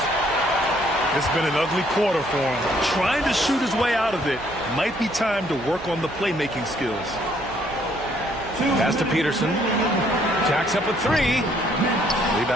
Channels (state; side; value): noise; right; hum, 17 dB below the sound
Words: It's been an ugly quarter for him. Trying to shoot his way out of it. Might be time to work on the playmaking skills. Pass to Peterson. Jacks up a three.